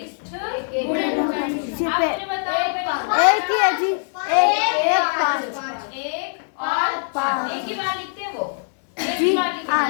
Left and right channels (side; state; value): right; silent; digital silence